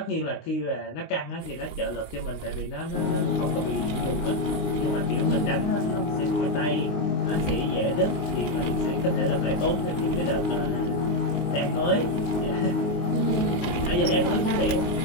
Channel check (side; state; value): right; late; 19 ms